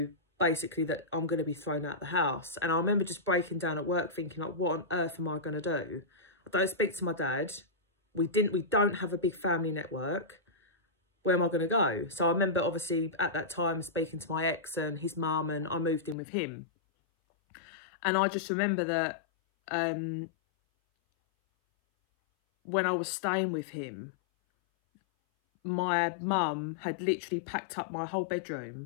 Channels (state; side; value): drops out; right; at 16.2 s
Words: basically that I'm going to be thrown out the house. And I remember just breaking down at work thinking, like, what on earth am I going to do? I don't speak to my dad. We don't have a big family network. Where am I going to go? So I remember obviously at that time speaking to my ex and his mum, and I moved in with him. And I just remember that when I was staying with him, my mum had literally packed up my whole